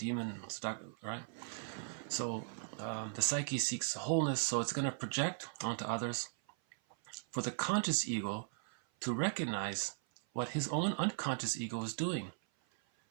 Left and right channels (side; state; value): left; silent; 52 dB below the other